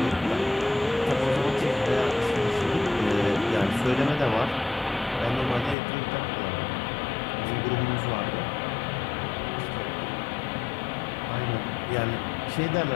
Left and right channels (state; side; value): drops out; right; at 5.8 s